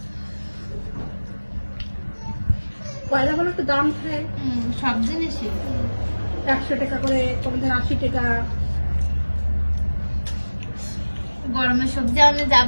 কয়লা বলে একটু দাম খায়, সব জিনিসই 100 টাকা করে, কোনদিন 80 টাকা। গরমের সবজি আনলে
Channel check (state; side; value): inverted; both; correlation -1.00